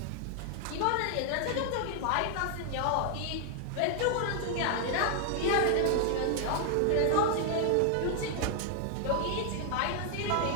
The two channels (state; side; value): different; both; correlation 0.00